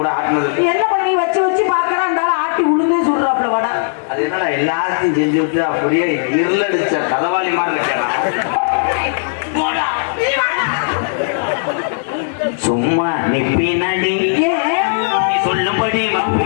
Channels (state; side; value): silent; right; digital silence